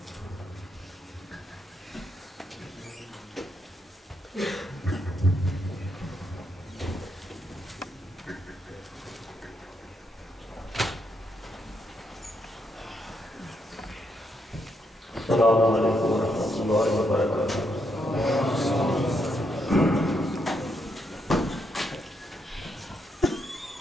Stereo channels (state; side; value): normal; both; correlation 0.78